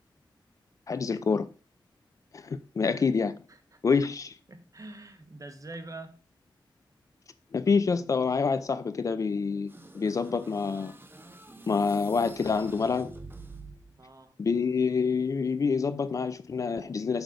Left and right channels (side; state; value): right; quieter; 4.8 dB